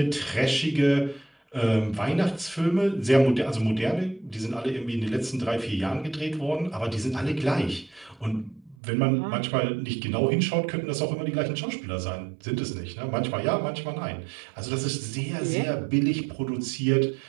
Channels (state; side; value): drops out; left; at 8.8 s